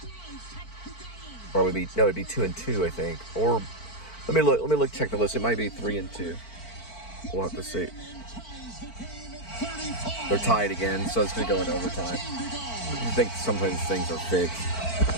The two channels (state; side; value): late; right; 4.5 ms